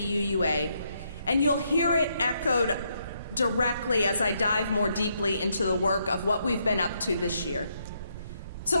and you'll hear it echoed directly as I dive more deeply into the work of what we've been up to this year. So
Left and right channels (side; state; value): both; inverted; correlation -0.76